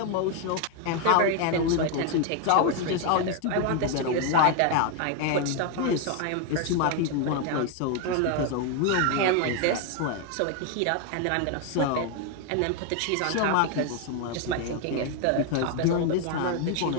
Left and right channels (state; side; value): different; both; correlation 0.01